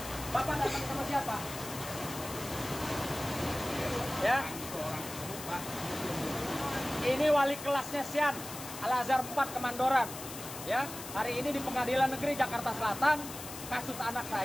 Bapak datang sama siapa? Ya. Ini wali kelasnya Sian, Al-Azhar 4 Kemandoran. Ya, hari ini di Pengadilan Negeri Jakarta Selatan, kasus anak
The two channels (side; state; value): left; noise; hiss, 11 dB below the sound